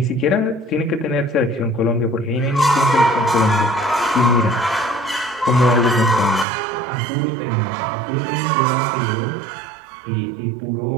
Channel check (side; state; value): left; drops out; at 6.5 s